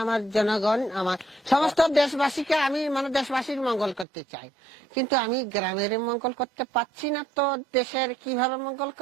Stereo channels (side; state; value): left; drops out; at 4.0 s